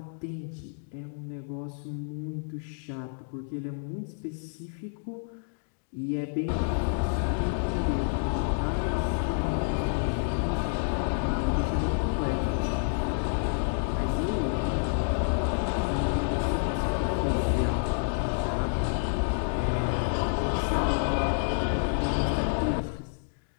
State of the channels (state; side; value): silent; right; digital silence